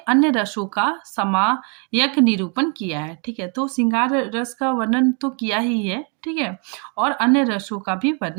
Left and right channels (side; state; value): left; quieter; 37.3 dB